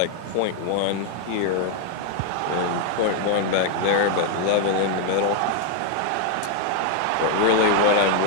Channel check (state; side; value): different; both; correlation 0.00